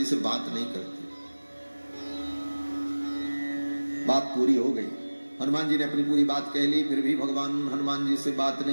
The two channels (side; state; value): both; inverted; correlation -1.00